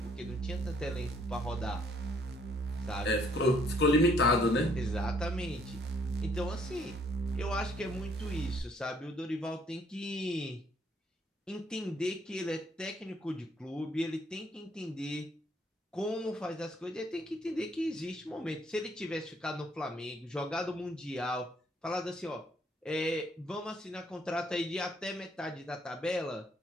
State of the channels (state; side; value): normal; both; correlation 0.65